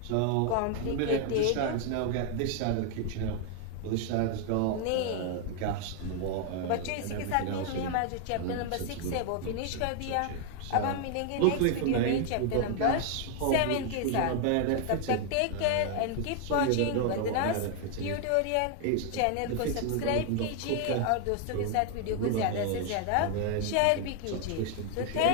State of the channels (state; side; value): different; both; correlation 0.00